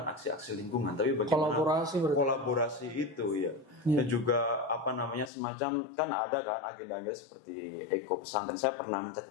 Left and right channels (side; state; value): right; drops out; at 5.3 s